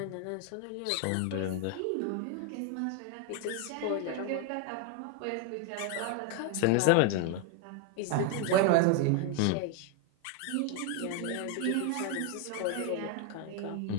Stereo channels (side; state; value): both; different; correlation 0.01